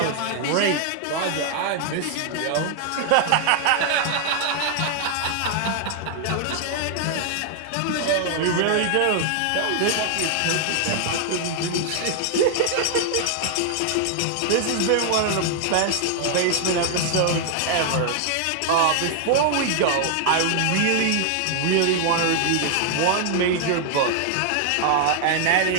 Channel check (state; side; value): different; both; correlation 0.00